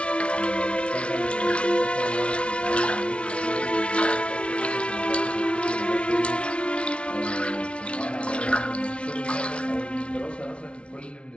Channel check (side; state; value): right; late; 0.060 ms